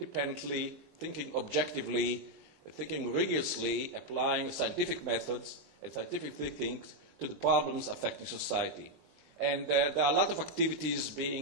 thinking objectively, thinking rigorously, applying scientific methods and scientific thinking to the problems affecting society. And there are a lot of activities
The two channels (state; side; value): late; left; 23 ms